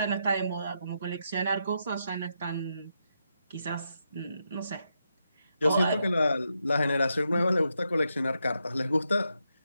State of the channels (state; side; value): inverted; both; correlation -0.83